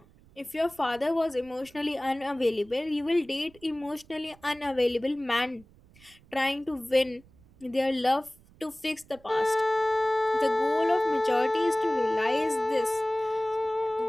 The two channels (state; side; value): noise; right; rumble, 27 dB below the sound